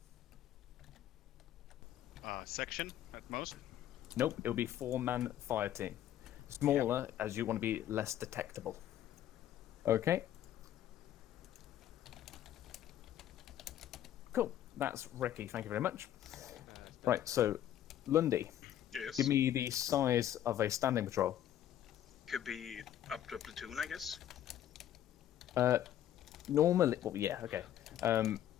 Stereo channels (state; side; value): quieter; right; 11.5 dB